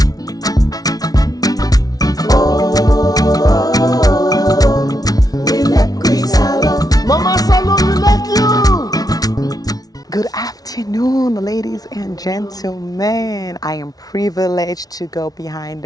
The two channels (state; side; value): late; right; 0.18 ms